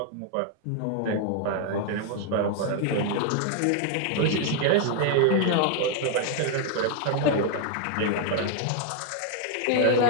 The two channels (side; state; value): both; different; correlation 0.00